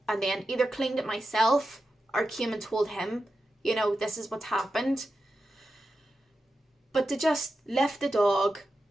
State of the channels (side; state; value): both; normal; correlation 0.91